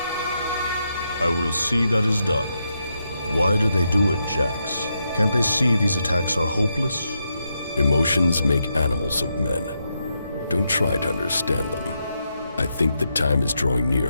I will see that is done. Why do they do it, Jax? Can't they see these attacks are hopeless? Emotions make animals of men. Don't try to understand them. I think the time is drawing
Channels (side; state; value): both; inverted; correlation -0.83